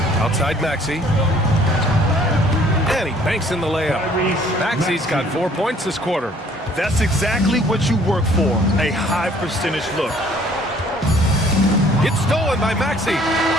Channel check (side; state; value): both; normal; correlation 0.58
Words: Outside Maxey. And he banks in the layup. Maxey's got 4 points this quarter. That's exactly what you work for, a high percentage look. It's stolen by Maxey.